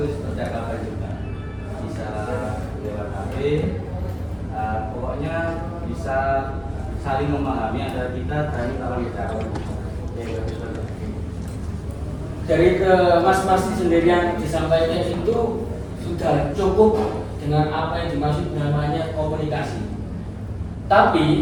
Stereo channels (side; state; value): both; identical; correlation 1.00